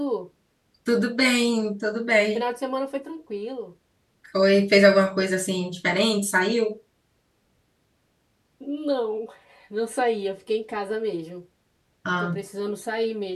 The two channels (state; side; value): identical; both; correlation 1.00